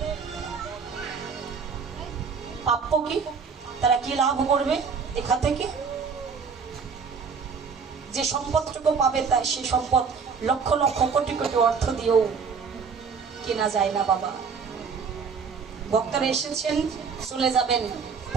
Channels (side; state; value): left; quieter; 5.7 dB